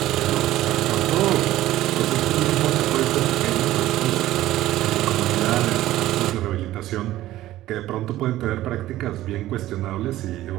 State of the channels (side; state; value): left; quieter; 15.0 dB